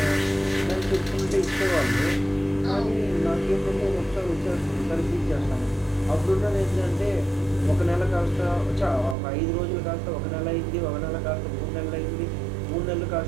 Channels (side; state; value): left; drops out; at 9.2 s